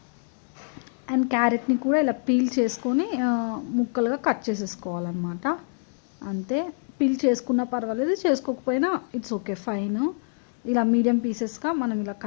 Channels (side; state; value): right; silent; digital silence